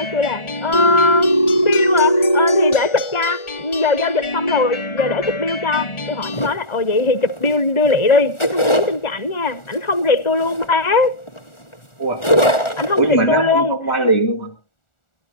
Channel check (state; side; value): late; right; 1.4 ms